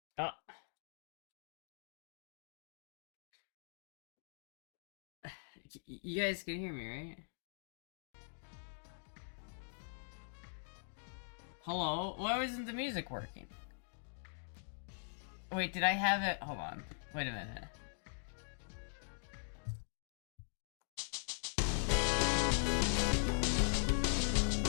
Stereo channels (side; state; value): right; silent; digital silence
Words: Uh, you guys can hear me, right? Hello? Why wasn't the music working? Wait, did I have it? Hold on. Wait a minute.